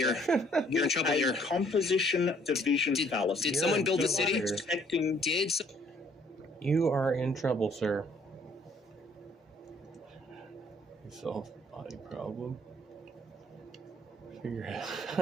You're in trouble here. Composition division fallacy. Did someone build the city? You are in trouble, sir. Solve body problem. Figure out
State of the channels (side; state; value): both; normal; correlation 0.62